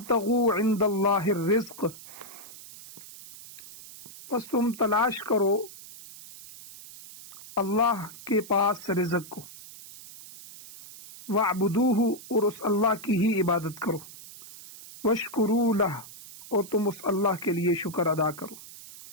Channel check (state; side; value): noise; right; hiss, 17 dB below the sound